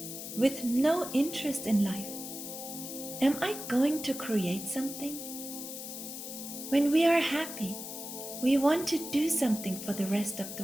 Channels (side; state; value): left; noise; hiss, 9 dB below the sound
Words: with no interest in life, am I going to create something? When we are happy, we want to do something for the rest of